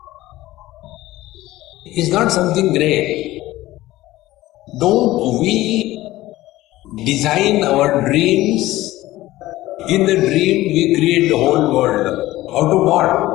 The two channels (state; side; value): quieter; right; 16.8 dB